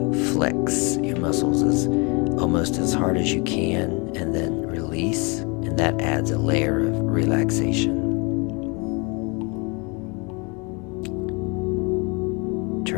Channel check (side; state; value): right; quieter; 30.5 dB